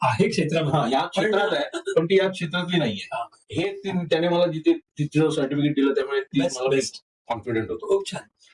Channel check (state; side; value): identical; both; correlation 1.00